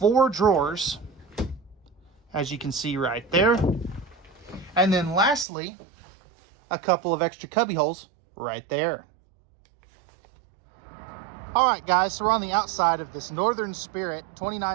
drawers, as you can see right there. And then lastly, a couple of extra cubby holes right there. All right, guys, so we're on the outside of this Northern Spirit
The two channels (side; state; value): left; drops out; at 5.5 s